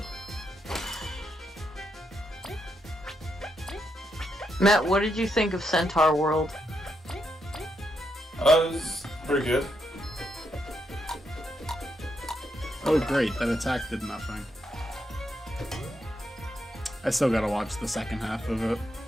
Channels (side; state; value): both; normal; correlation 0.80